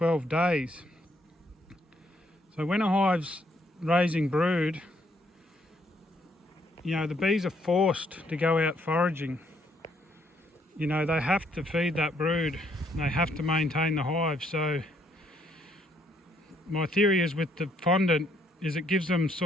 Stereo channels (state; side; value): normal; both; correlation 0.71